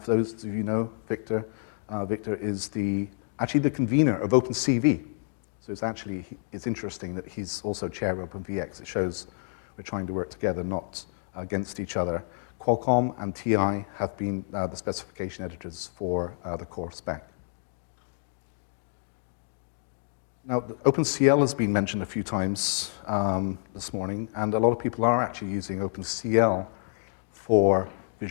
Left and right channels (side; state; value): right; silent; digital silence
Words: those of you know, Victor is actually the convener of OpenCV. So it's interesting that he's also chair of OpenVX. It shows we're trying to work together, not against each other. Qualcomm and TI have been the specification editors for the core spec. Now, OpenCL has been mentioned a few times this morning, and a lot of people are actually using OpenCL for